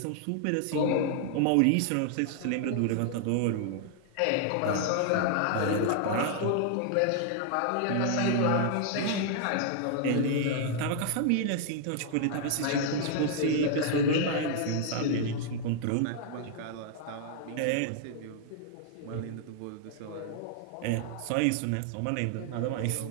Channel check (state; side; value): different; both; correlation 0.00